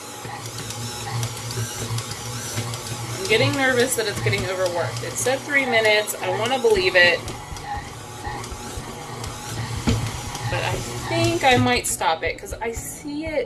I'm getting nervous that it's getting overworked. It said 3 minutes. I want to believe it. But I think I might stop it because I see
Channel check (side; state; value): both; identical; correlation 1.00